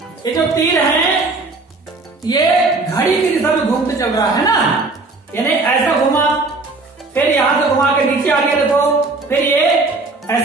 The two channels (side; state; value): left; quieter; 3.5 dB